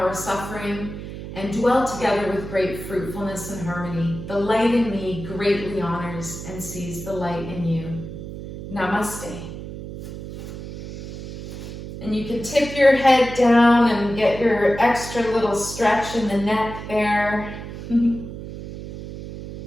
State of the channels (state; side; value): noise; right; hum, 10 dB below the sound